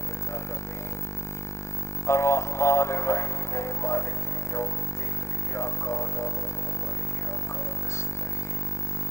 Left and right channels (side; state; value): right; late; 0.14 ms